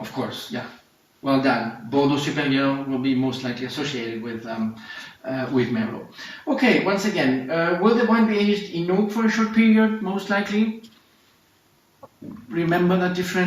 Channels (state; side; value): identical; both; correlation 1.00